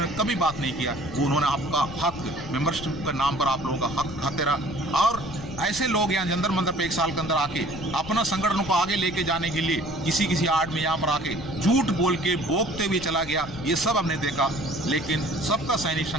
कभी बात नहीं किया। वो उन्होंने आपका हक, मेंबरशिप के नाम पर आप लोगों का हक खाते रहा, और ऐसे लोग यहाँ जंतर मंतर पे 1 साल के अंदर आके अपना संगठन को आगे लेके जाने के लिए किसी आड़ में यहाँ पर आके झूठ बोल के बोकते हुए चला गया, ये सब हमने देखा। लेकिन सबका सैनिक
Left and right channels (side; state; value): left; noise; rumble, 15 dB below the sound